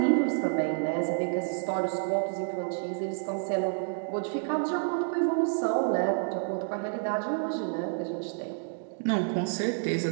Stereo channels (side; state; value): left; silent; digital silence